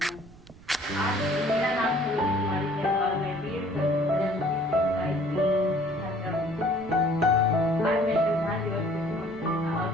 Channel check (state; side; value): noise; right; rumble, 22 dB below the sound